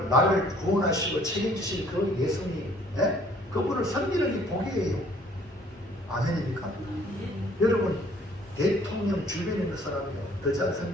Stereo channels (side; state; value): both; normal; correlation 0.58